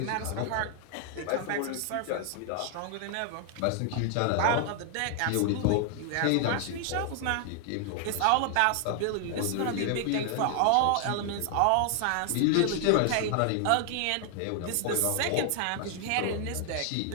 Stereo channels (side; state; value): both; different; correlation 0.00